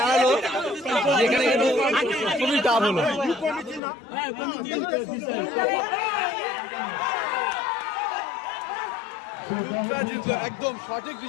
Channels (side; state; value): right; drops out; at 3.8 s